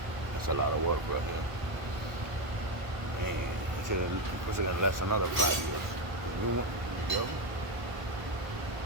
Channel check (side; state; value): left; late; 1.0 ms